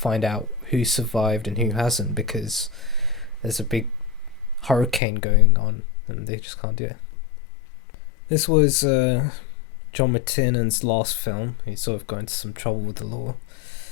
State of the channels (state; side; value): drops out; right; at 5.0 s